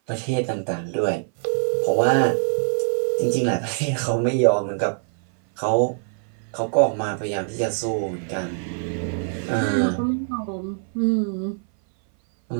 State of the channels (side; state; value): left; silent; 58 dB below the other